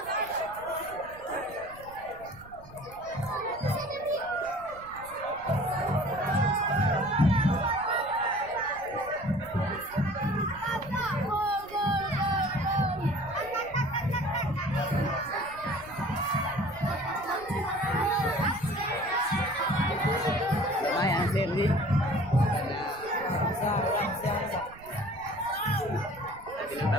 lumayan Serdi dengan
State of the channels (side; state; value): right; noise; rumble, 21 dB below the sound